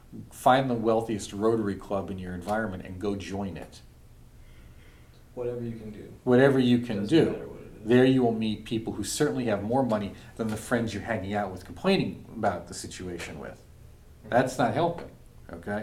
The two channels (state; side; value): identical; both; correlation 1.00